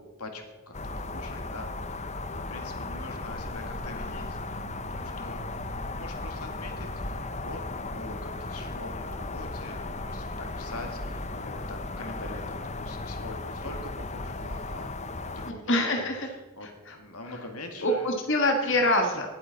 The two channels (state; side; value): normal; both; correlation 0.14